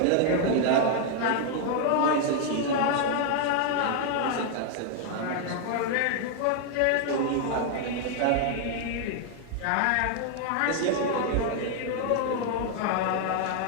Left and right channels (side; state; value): both; different; correlation 0.00